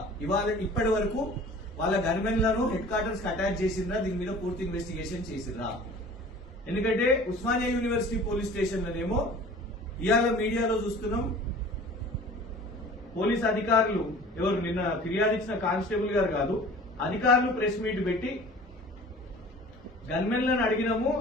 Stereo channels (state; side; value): normal; both; correlation 0.44